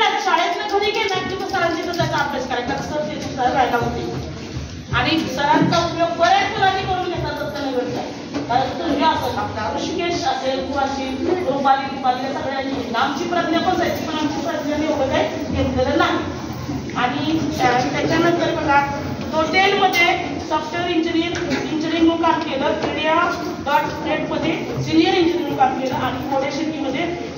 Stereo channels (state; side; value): identical; both; correlation 1.00